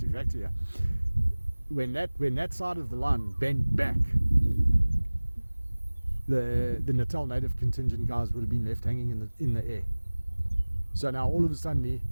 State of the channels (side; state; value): both; inverted; correlation -1.00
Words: factor here. When that side of the line bent back, the Natal native contingent guys would have been left hanging in the air. So now all of a sudden,